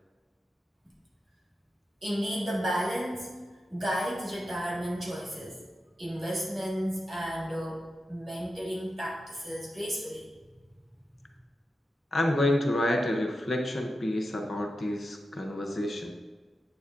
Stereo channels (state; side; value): normal; both; correlation 0.90